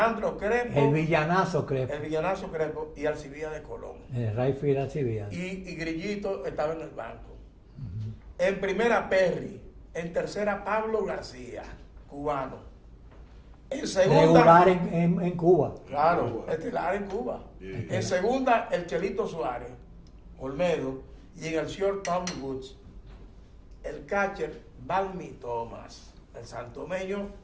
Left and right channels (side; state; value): both; identical; correlation 1.00